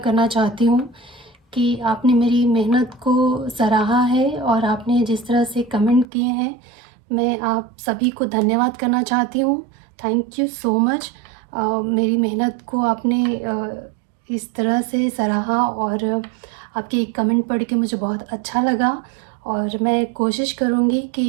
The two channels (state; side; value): drops out; left; at 6.1 s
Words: करना चाहती हूँ कि आपने मेरी मेहनत को सराहा है और आपने जिस तरह से कमेंट किए हैं, मैं आप सभी को धन्यवाद करना चाहती हूँ। Thank you so much. मेरी मेहनत को आपने इस तरह से सराहा और आपके कमेंट पढ़ के मुझे बहुत अच्छा लगा और मैं कोशिश करूँगी